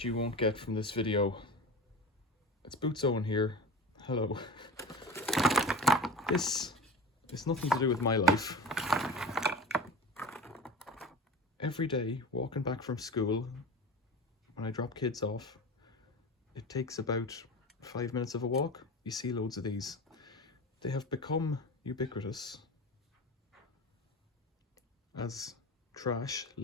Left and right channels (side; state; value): both; normal; correlation 0.31